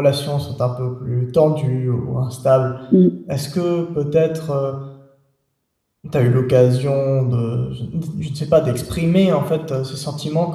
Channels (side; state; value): both; identical; correlation 1.00